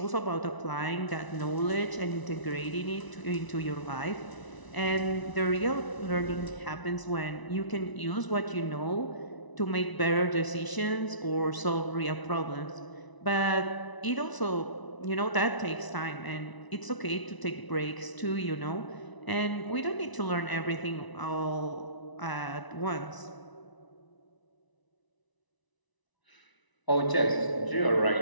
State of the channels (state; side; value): late; right; 1.0 ms